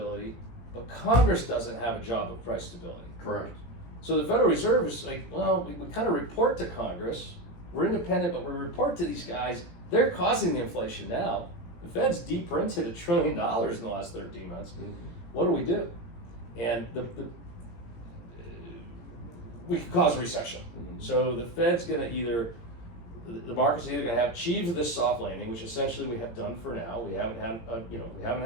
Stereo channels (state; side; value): late; right; 18 ms